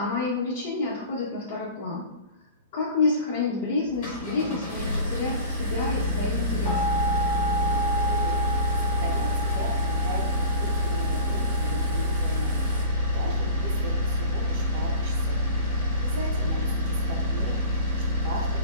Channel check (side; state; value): both; inverted; correlation -0.40